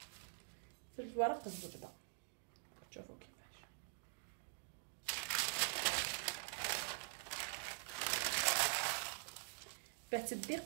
في ورق الزبده. شوفوا كيفاش باه تدي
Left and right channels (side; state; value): left; silent; digital silence